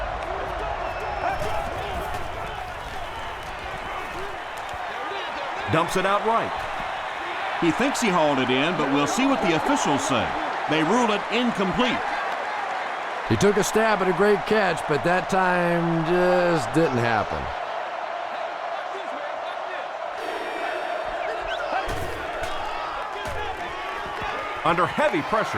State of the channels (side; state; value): both; identical; correlation 1.00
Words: Dumps it out right. He thinks he hauled it in, but we'll see what the officials say. They rule it incomplete. He took a stab at a great catch, but that time just didn't happen. Under heavy